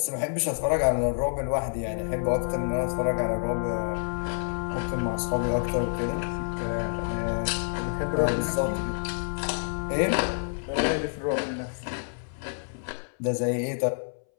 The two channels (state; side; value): silent; right; 59 dB below the other